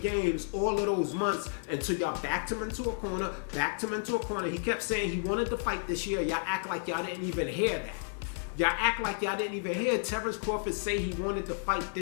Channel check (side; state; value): right; silent; digital silence